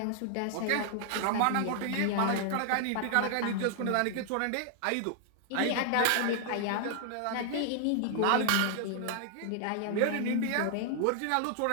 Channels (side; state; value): both; different; correlation 0.00